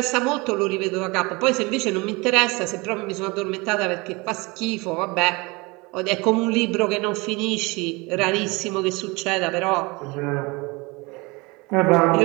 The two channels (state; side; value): quieter; left; 25.6 dB